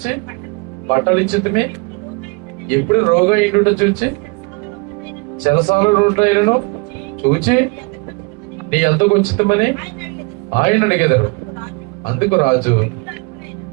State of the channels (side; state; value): left; quieter; 30.6 dB